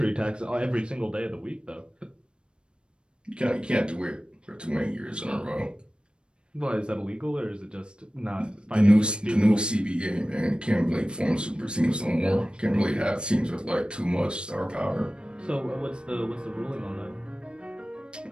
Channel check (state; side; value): late; left; 0.054 ms